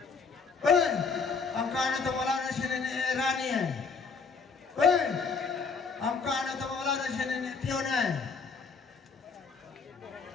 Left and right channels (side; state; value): right; quieter; 5.1 dB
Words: Hei, angka anak temelana sini Rani. Hei, angka anak temelana sini Tiona.